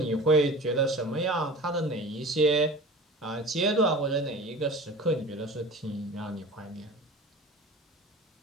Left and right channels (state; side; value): normal; both; correlation 0.38